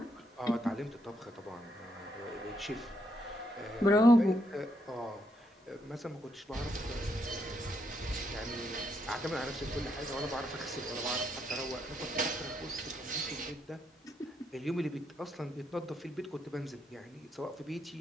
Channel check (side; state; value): both; normal; correlation 0.77